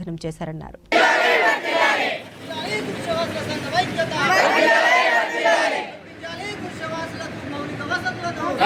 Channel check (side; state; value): both; identical; correlation 1.00